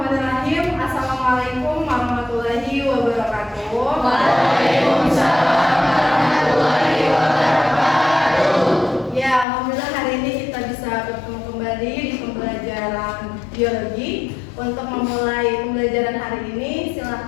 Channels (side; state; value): right; drops out; at 9.5 s